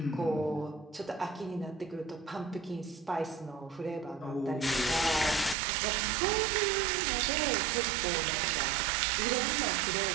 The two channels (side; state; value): left; drops out; at 5.6 s